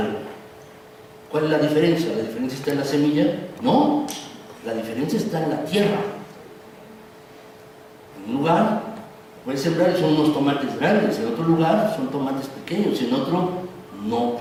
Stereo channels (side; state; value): both; identical; correlation 1.00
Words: ¿Cuál es la diferencia? ¿La diferencia está en la semilla? No, la diferencia está en la tierra. En un lugar puedes sembrar y son unos tomates grandes, en otro lugar son tomates pequeños, en otro no